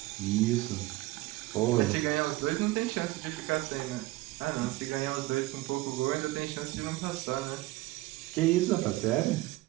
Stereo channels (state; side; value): quieter; left; 18.8 dB